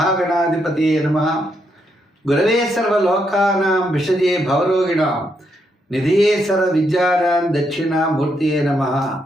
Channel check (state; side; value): normal; both; correlation 0.78